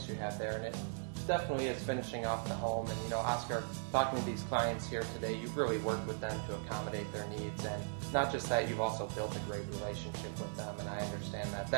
you have there, and it definitely is finishing off the home. And Oscar, talking to these clients here today, you've really worked with them to accommodate their needs, and not just that, you've also built a great relationship with them, and I understand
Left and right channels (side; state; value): left; silent; digital silence